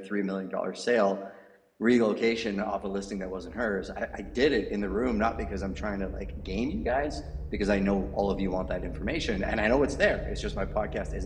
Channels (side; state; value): both; identical; correlation 1.00